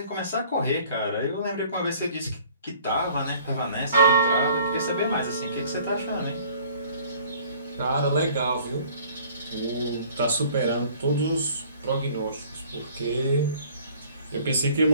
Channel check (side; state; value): both; inverted; correlation -0.54